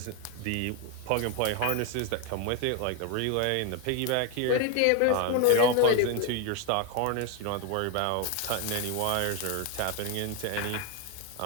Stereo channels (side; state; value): both; different; correlation 0.01